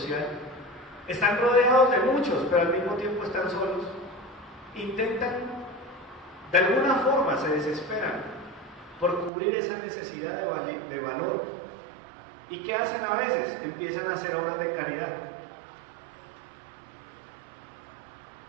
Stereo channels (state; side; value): drops out; left; at 9.3 s